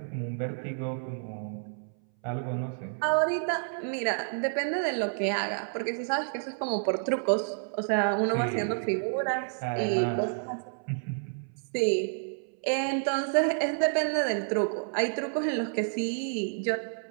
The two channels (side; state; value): left; silent; 58 dB below the other